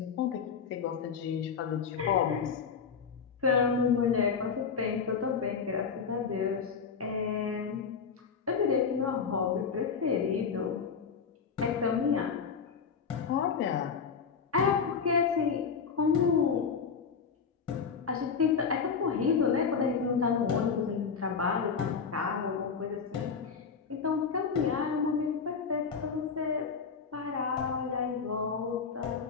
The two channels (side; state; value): right; quieter; 6.0 dB